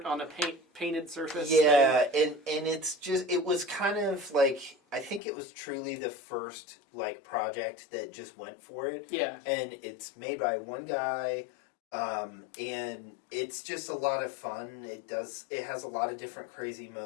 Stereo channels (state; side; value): drops out; right; at 5.2 s